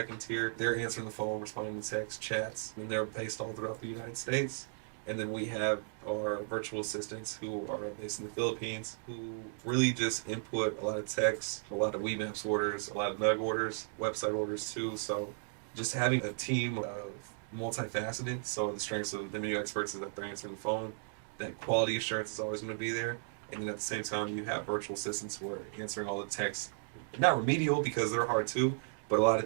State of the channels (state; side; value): silent; left; digital silence